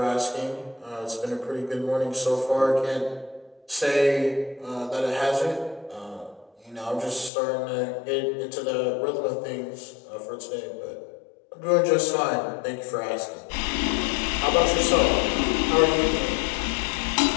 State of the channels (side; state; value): right; drops out; at 7.3 s